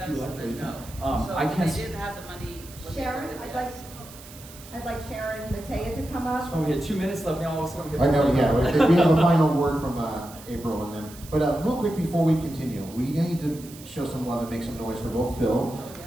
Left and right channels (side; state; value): right; noise; hiss, 18 dB below the sound